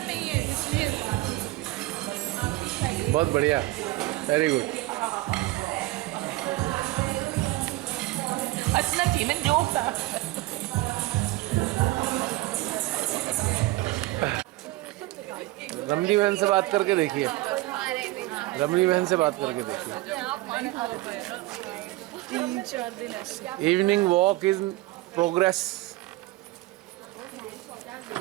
है इसलिए। बहुत बढ़िया, वेरी गुड। हंसना चाहिए ना, जोक था। रमणी बहन से बात करके देखिए, रमणी बहन से बात करके देखिए। 3-4 दिन ऐसे। Evening walk is progress.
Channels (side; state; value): left; quieter; 18.5 dB